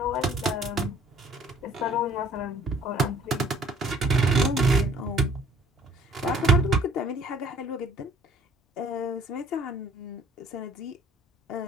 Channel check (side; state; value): both; normal; correlation 0.55